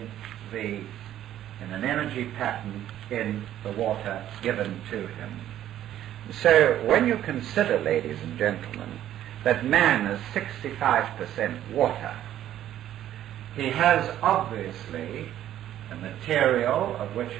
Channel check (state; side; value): quieter; left; 11.9 dB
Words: an energy pattern in the water given to him. So when you consider, ladies and gentlemen, that man is 65% water, he has obviously a material of which